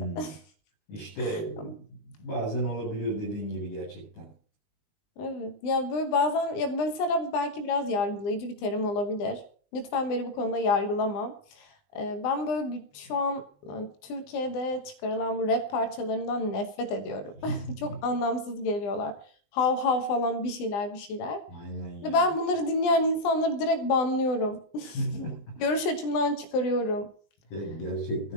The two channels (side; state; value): right; late; 20 ms